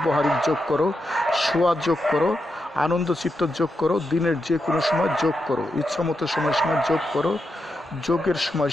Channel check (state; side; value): normal; both; correlation 0.86